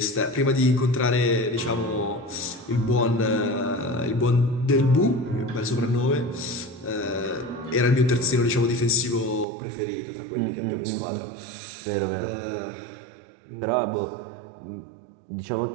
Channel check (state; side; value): drops out; left; at 9.5 s